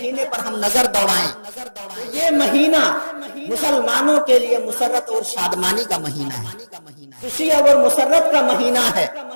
پر ہم نظر دوڑائیں تو یہ مہینہ مسلمانوں کے لیے مسرت اور شادمانی کا مہینہ ہے، خوشی اور مسرت کا مہینہ ہے۔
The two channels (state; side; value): inverted; both; correlation -1.00